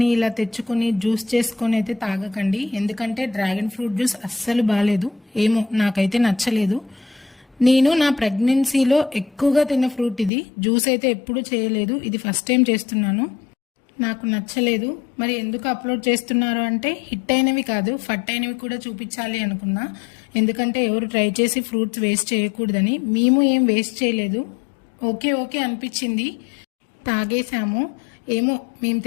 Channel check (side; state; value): right; drops out; at 10.3 s